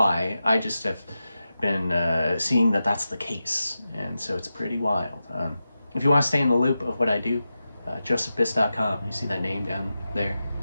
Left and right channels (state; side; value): inverted; both; correlation -0.91